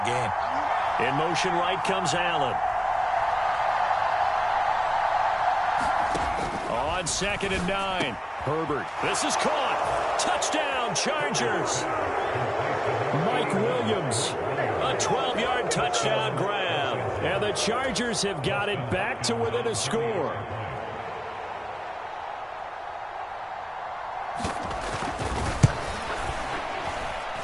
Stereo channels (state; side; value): identical; both; correlation 1.00